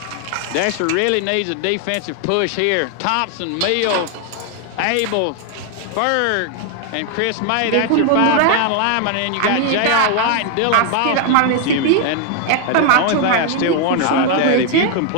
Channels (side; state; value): both; different; correlation 0.00